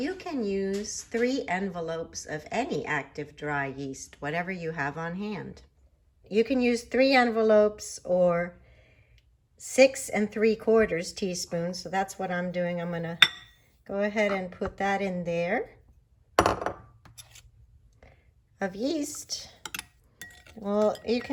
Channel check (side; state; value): both; identical; correlation 1.00